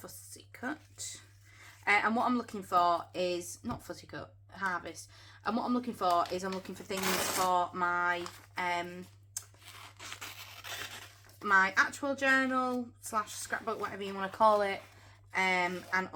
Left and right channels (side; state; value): both; identical; correlation 1.00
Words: cut. And what I'm looking for is not fussy cut, harvest. And what I'm looking for is I'm looking for things for my my actual journal / scrapbook, whatever you want to call it, and